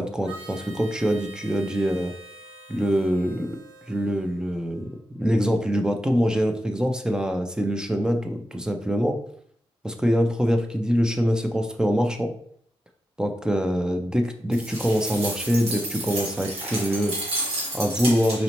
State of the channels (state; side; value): normal; both; correlation 0.88